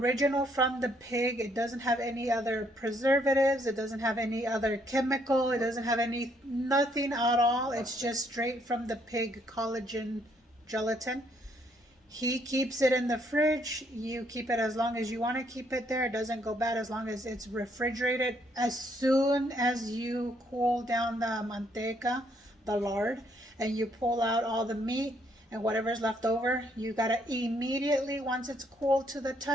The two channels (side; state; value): both; normal; correlation 0.70